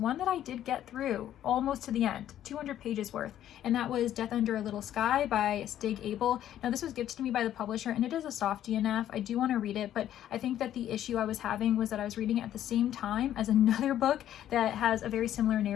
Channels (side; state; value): right; quieter; 11.5 dB